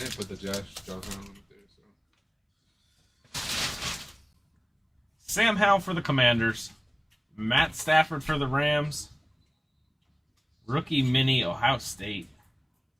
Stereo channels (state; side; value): identical; both; correlation 1.00